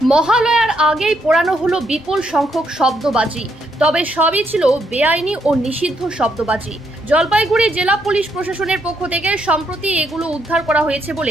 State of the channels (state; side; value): normal; both; correlation 0.76